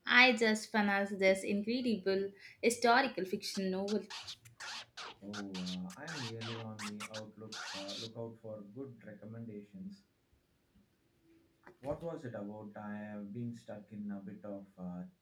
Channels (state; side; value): identical; both; correlation 1.00